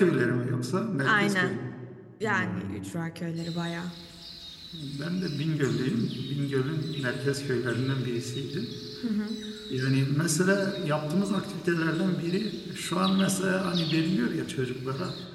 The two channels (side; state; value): both; identical; correlation 1.00